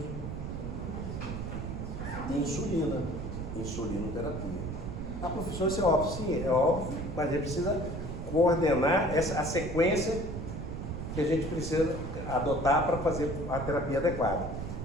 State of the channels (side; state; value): right; noise; rumble, 6 dB below the sound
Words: Insulina. Insulinoterapia. Ah, professor, isso é óbvio. Sim, é óbvio, mas a gente precisa coordenar a sequência que a gente precisa adotar para fazer a terapia adequada.